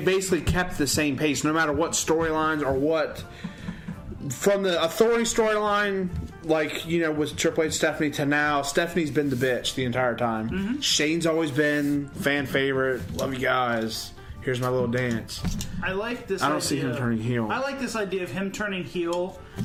kept the same pace no matter what storylines or what... From the Authority storyline, like, you know, with Triple H, Stephanie, to now, Stephanie's been the bitch the entire time. Mm-hmm. Shane's always been fan favorite. Love you guys. Here's my little dance. I like this. I don't see him turning heel. I like this idea of him turning heel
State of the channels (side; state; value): both; identical; correlation 1.00